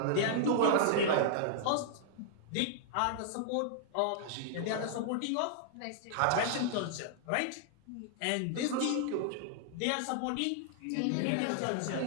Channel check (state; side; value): different; both; correlation -0.01